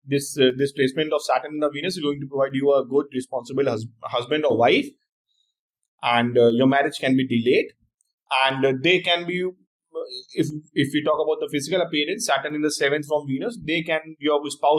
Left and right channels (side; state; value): both; identical; correlation 1.00